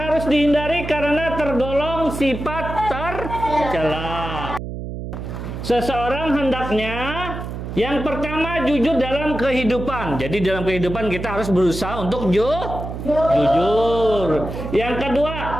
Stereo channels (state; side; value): noise; right; hum, 7 dB below the sound